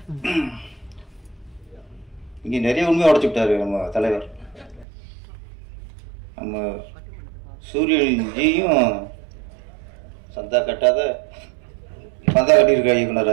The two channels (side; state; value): left; drops out; at 4.9 s